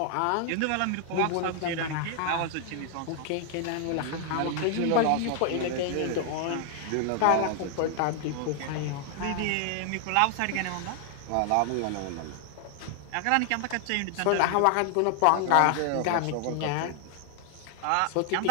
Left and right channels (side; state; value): both; different; correlation 0.00